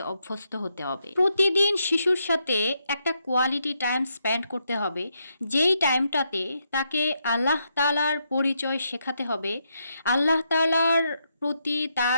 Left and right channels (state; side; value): inverted; both; correlation -0.80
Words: অভ্যস্ত হতে হবে। প্রতিদিন শিশুর সাথে একটা কোয়ালিটি টাইম স্পেন্ড করতে হবে, যেই টাইমটাতে তাকে আল্লাহ তাআলার পরিচয় শেখাতে হবে। আল্লাহ তাআলার প্রতি